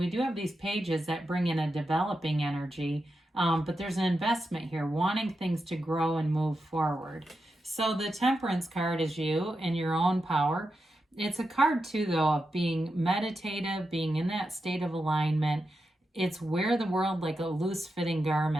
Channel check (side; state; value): both; normal; correlation 0.88